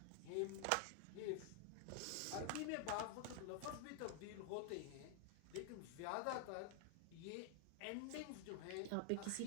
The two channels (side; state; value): both; different; correlation 0.00